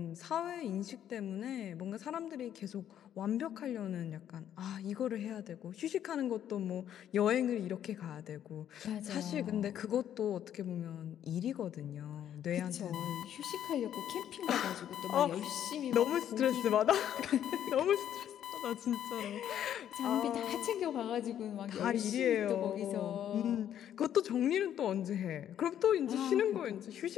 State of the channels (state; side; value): quieter; right; 10.3 dB